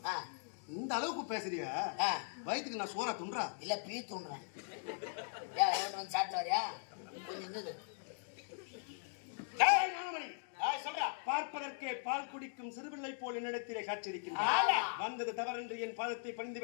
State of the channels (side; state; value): right; silent; digital silence